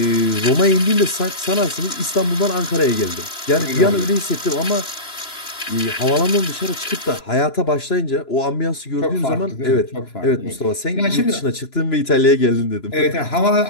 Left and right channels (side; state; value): right; late; 2.9 ms